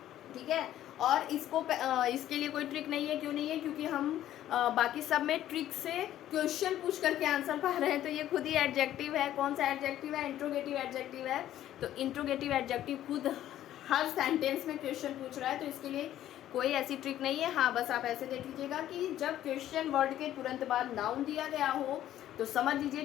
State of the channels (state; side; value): quieter; right; 12.4 dB